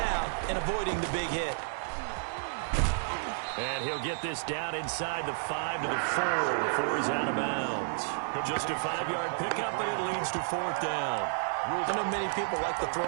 and avoiding the big hit. And he'll get this down inside the 5 to the 4 before he's out of bounds. Just a 5-yard pickup, and it leads to 4th down. I know many people like to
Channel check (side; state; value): left; silent; 57 dB below the other